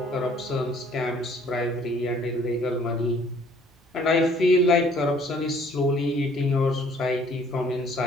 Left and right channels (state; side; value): normal; both; correlation 0.58